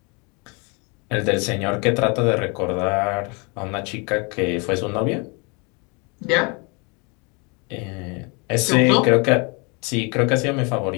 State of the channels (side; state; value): right; quieter; 31.3 dB